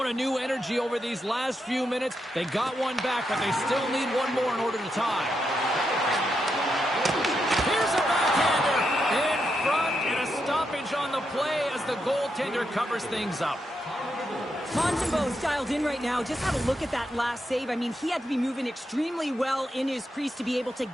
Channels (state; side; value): normal; both; correlation 0.83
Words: a new energy over these last few minutes. They got one back, but they still need one more in order to tie. Here's a backhander in front, and a stoppage on the play as the goaltender covers things up. Montembeau's dialed in right now. Just have a look at that last save. I mean, he had to be moving extremely well in his crease to be able to